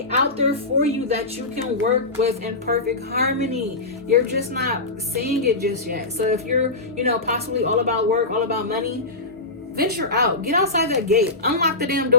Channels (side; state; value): right; quieter; 3.0 dB